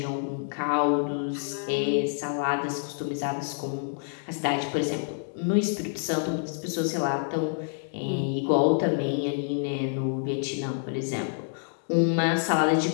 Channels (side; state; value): right; silent; digital silence